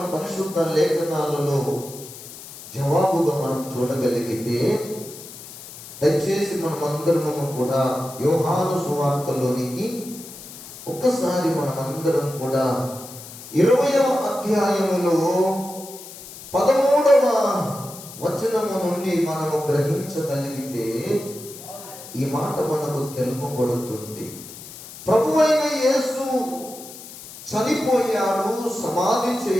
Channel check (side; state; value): left; noise; hiss, 15 dB below the sound